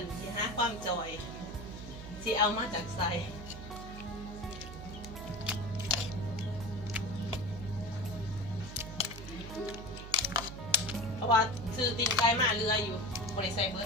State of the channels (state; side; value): noise; right; hum, 11 dB below the sound